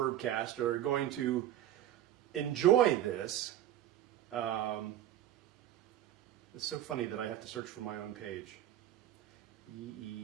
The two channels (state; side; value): quieter; left; 12.3 dB